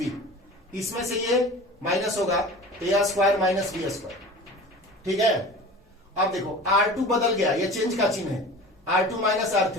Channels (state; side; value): normal; both; correlation 0.38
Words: इसमें से ये माइनस होगा A² - B², ठीक है? अब देखो R2 बदल गया, ये चेंज का चिन्ह है, R2 -